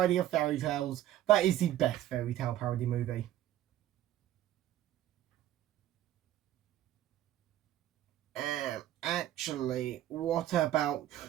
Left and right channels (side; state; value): left; quieter; 12.9 dB